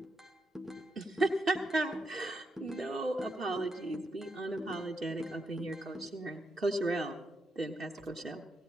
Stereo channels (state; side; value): normal; both; correlation 0.82